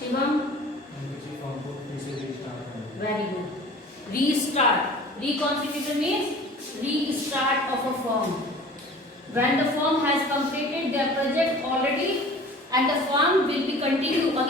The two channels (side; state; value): both; normal; correlation 0.44